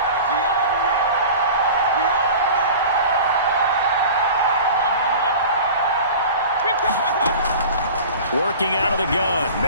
Working out of the gun,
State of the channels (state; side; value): inverted; both; correlation -0.38